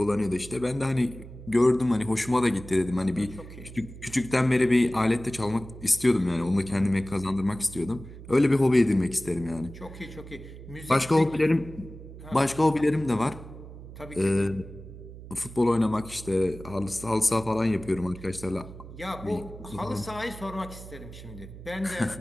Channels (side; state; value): right; noise; hum, 15 dB below the sound